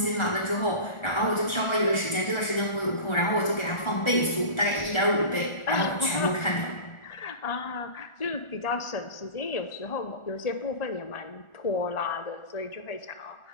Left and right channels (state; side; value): late; right; 1.4 ms